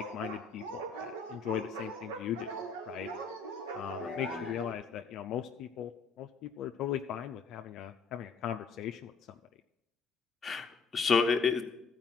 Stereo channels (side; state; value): right; quieter; 5.1 dB